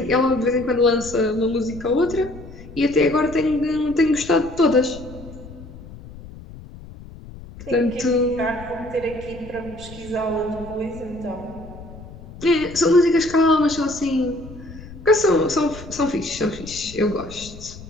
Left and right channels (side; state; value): left; noise; rumble, 16 dB below the sound